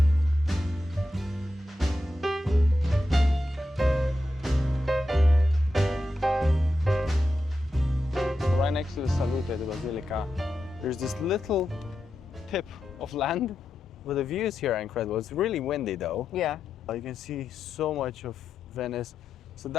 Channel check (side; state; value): both; normal; correlation 0.88